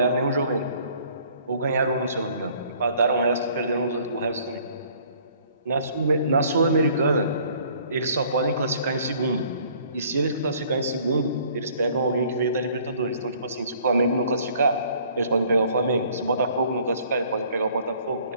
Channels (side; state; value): both; inverted; correlation -0.57